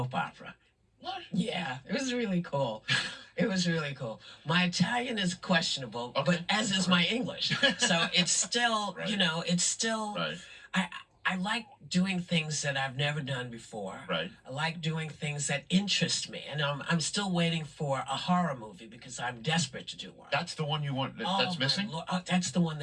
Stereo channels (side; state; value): both; identical; correlation 1.00